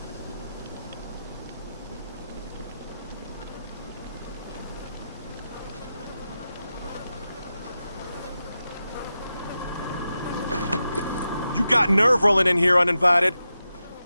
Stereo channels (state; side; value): inverted; both; correlation -0.90